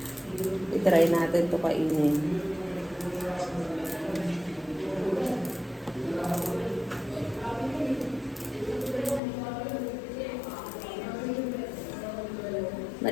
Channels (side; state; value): right; drops out; at 9.2 s